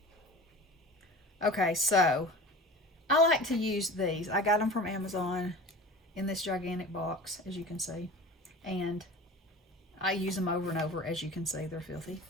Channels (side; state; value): both; normal; correlation 0.37